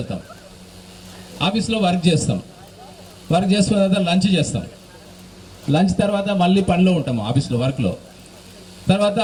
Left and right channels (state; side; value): identical; both; correlation 1.00